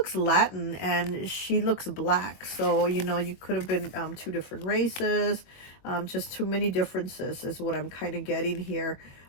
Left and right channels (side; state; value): right; late; 22 ms